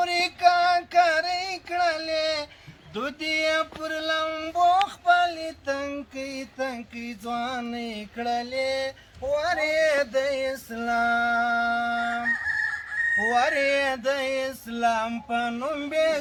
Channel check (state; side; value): identical; both; correlation 1.00